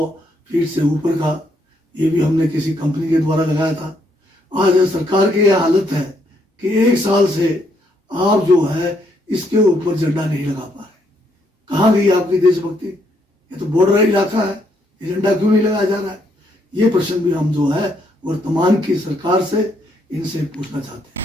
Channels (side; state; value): both; normal; correlation 0.73